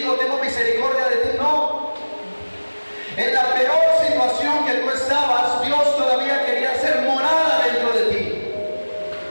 tengo misericordia de ti, no. En la peor situación que tú estabas, Dios todavía quería hacer morada dentro de ti.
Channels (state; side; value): inverted; both; correlation -1.00